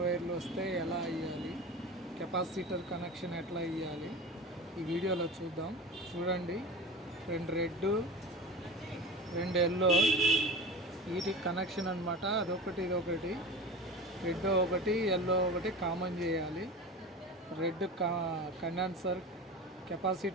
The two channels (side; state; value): both; normal; correlation 0.31